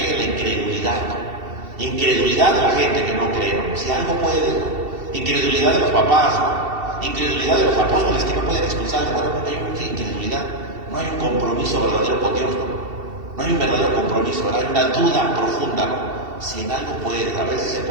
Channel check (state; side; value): late; left; 2.7 ms